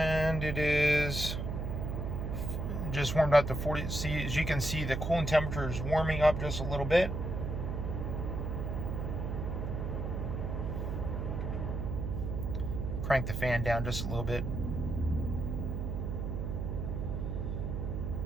it is just warmed up to 40. See, as you can see, the coolant temperature is warming up just a little bit. Crank the fan down just a little bit.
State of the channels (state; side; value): noise; right; hum, 2 dB below the sound